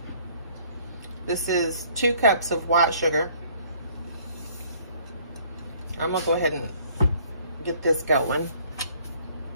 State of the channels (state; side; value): inverted; both; correlation -0.59